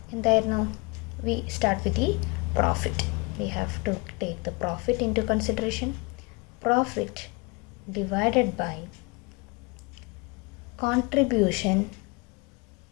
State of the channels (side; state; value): right; quieter; 28.4 dB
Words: എന്തായിരുന്നു? We start with the profit. We have to take the profit into consideration. Profit divided by contribution